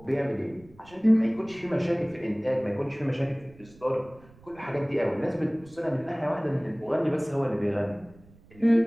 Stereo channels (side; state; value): right; noise; rumble, 25 dB below the sound